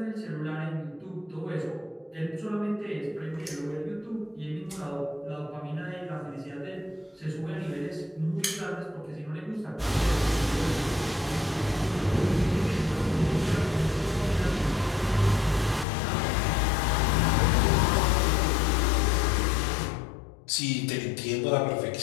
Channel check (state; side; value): drops out; right; at 15.9 s